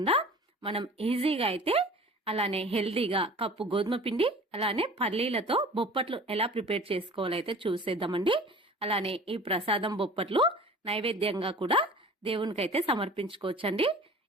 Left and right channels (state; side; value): normal; both; correlation 0.42